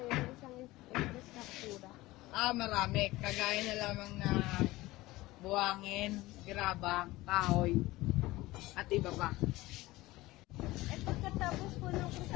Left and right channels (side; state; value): right; quieter; 18.9 dB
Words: ng isang infrastruktura? Marami. Kagaya na lamang na buwangin, grabang, kahoy, at iba pa. At pagkatapos po ng